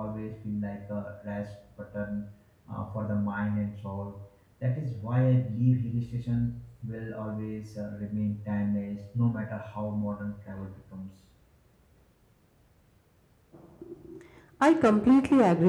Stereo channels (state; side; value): identical; both; correlation 1.00